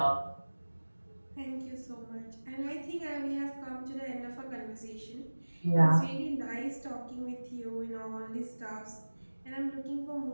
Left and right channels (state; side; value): inverted; both; correlation -1.00